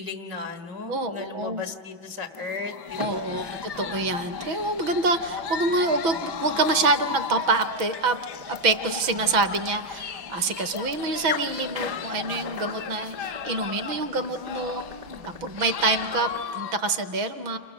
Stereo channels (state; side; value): late; left; 6.1 ms